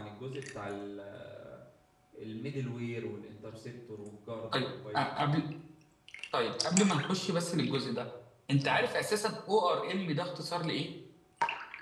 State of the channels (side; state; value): both; identical; correlation 1.00